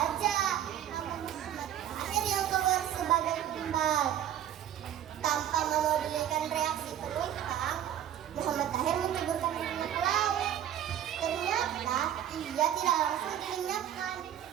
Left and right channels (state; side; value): quieter; left; 10.7 dB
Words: nama Muhammad Tahir yang keluar sebagai tumbal. Tanpa memedulikan reaksi penumpang, Muhammad Tahir menceburkan dirinya ke laut. Ternyata ia tidak langsung dilenyapkan.